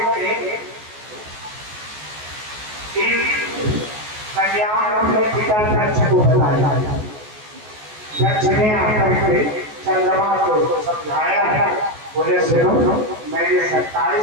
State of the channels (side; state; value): left; late; 14 ms